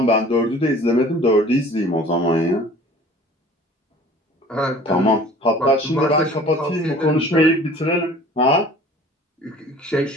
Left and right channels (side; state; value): both; normal; correlation 0.47